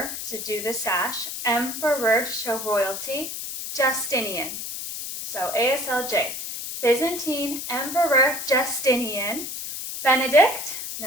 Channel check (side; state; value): left; noise; hiss, 6 dB below the sound